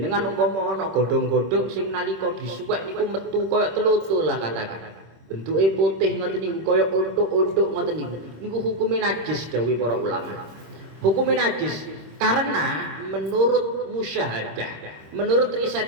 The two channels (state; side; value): late; left; 26 ms